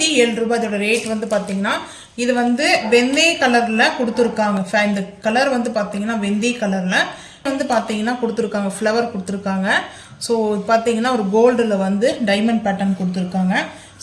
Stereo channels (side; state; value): both; identical; correlation 1.00